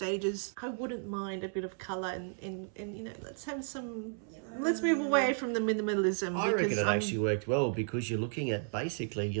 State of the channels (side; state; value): left; silent; 55 dB below the other